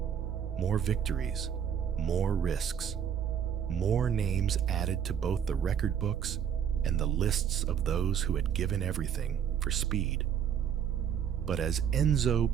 More victories, more risks, more names added to both the record books and the lists of those who had given everything for speed. But as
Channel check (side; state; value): left; quieter; 8.5 dB